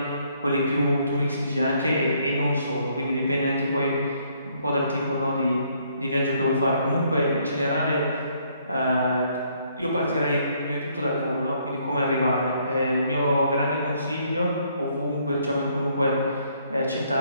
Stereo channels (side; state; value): both; inverted; correlation -0.68